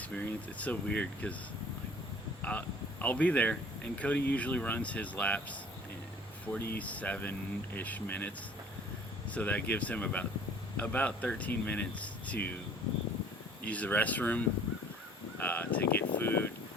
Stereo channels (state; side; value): normal; both; correlation 0.51